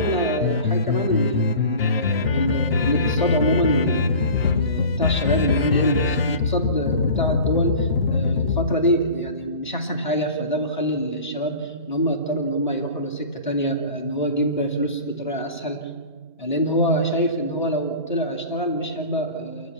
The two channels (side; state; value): both; inverted; correlation -0.38